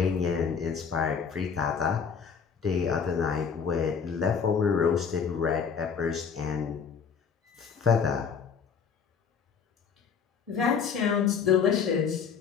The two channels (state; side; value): quieter; right; 6.4 dB